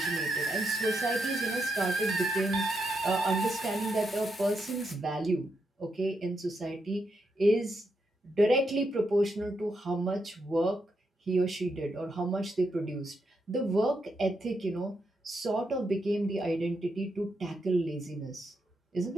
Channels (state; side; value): normal; both; correlation 0.82